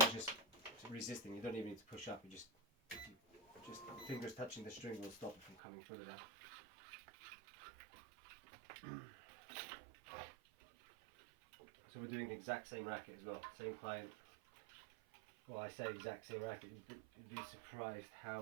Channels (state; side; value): drops out; left; at 5.6 s